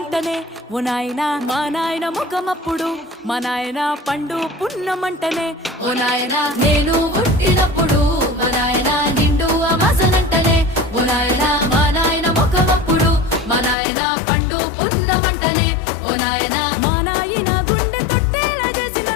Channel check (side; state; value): right; drops out; at 13.8 s